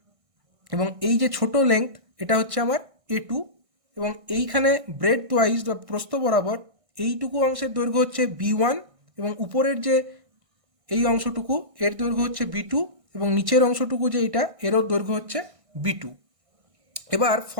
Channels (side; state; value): left; late; 1.6 ms